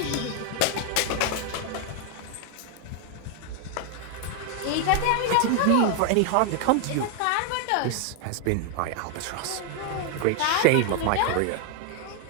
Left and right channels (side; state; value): both; different; correlation 0.00